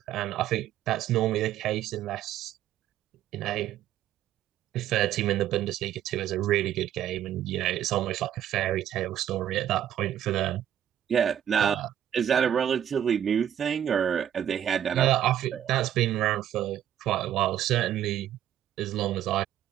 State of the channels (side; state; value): left; quieter; 10.8 dB